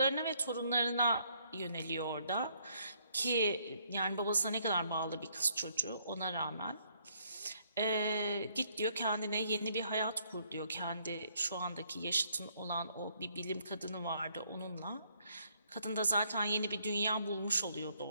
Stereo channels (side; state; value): both; inverted; correlation -0.68